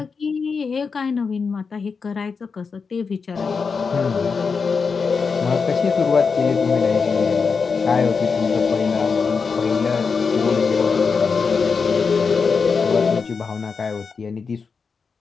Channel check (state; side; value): quieter; right; 5.3 dB